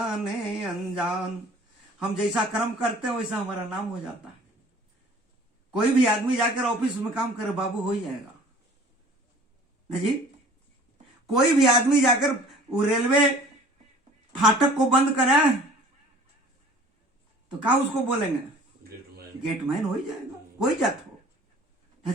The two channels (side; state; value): both; normal; correlation 0.49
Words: अनजान। हम जैसा कर्म करते हैं वैसा हमारा नाम हो जाता है। कोई भी आदमी जाकर ऑफिस में काम करे, बाबू हो ही जाएगा ना जी। कोई भी आदमी जाकर वो रेलवे फाटक को बंद करे तो क्या उसको बोलेंगे? गेटमैन हो ही जाएगा, कोई जात हो ना